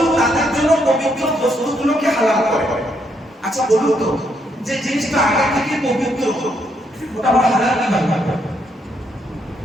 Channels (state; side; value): normal; both; correlation 0.75